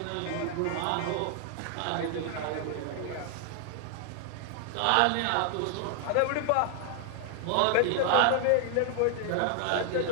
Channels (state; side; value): different; both; correlation 0.00